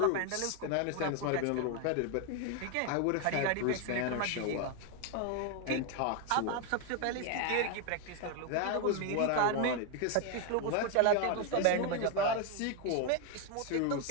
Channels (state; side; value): different; both; correlation 0.01